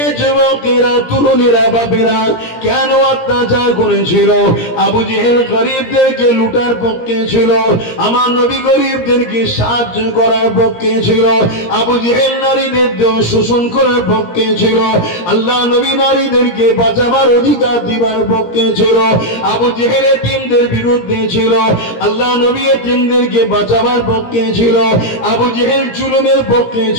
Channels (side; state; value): right; late; 17 ms